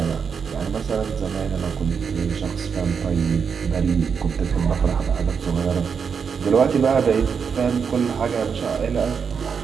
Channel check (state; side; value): quieter; left; 6.3 dB